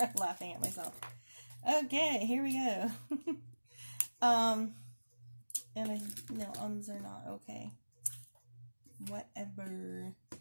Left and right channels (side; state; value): both; inverted; correlation -1.00